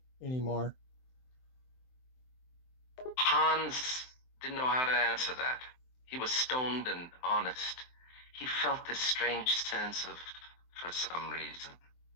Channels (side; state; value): right; late; 23 ms